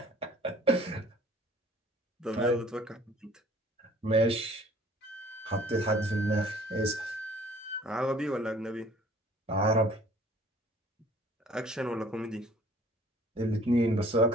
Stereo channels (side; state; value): both; normal; correlation 0.54